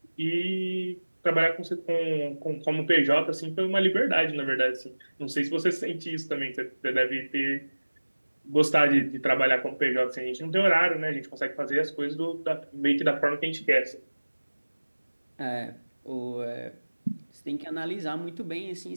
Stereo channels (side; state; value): both; inverted; correlation -1.00